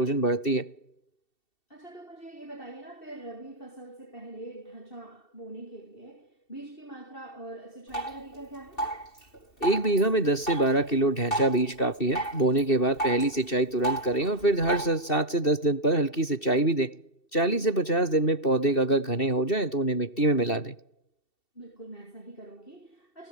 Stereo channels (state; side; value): late; right; 2.7 ms